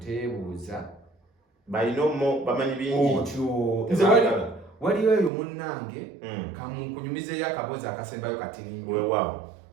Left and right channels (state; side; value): drops out; left; at 5.3 s